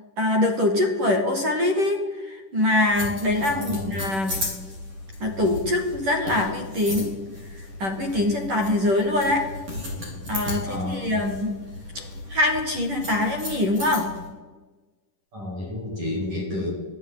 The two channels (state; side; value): late; left; 10 ms